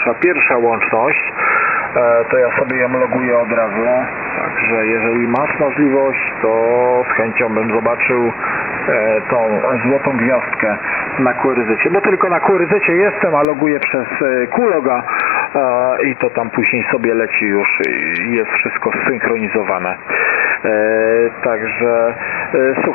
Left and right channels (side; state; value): right; drops out; at 13.5 s